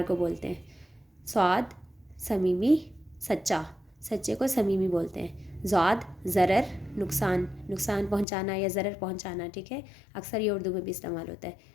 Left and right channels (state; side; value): drops out; right; at 8.2 s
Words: کو بولتے ہیں۔ صاد صمیمی سچا، سچے کو صمیمی بولتے ہیں۔ زاد ضرر نقصان، نقصان پہنچانا یا ضرر پہنچانا، ٹھیک ہے، اکثر یہ اردو میں بھی استعمال ہوتا ہے۔